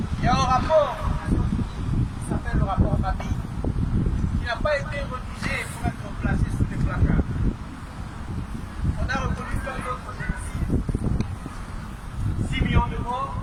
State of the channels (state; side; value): identical; both; correlation 1.00